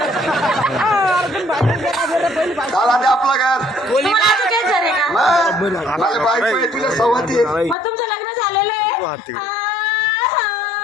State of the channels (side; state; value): right; drops out; at 7.8 s